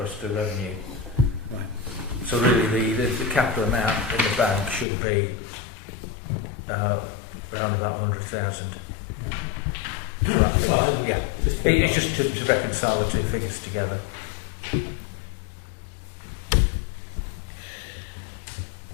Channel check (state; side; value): drops out; right; at 4.9 s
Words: to revenue. Right. So really the capital amount in the bank should be around about 100,000. Yeah. Sorry, Yeah. It's just to reconcile the two figures together.